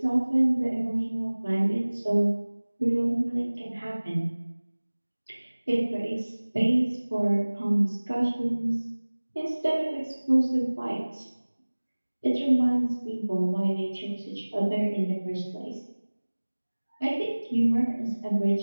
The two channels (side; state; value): both; inverted; correlation -1.00